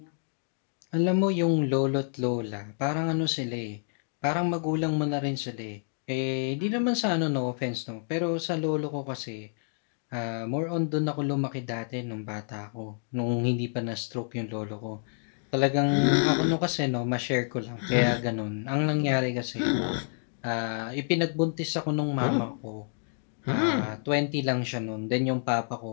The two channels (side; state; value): right; silent; digital silence